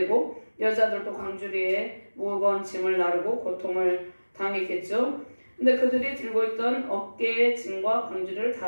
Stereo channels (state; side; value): inverted; both; correlation -1.00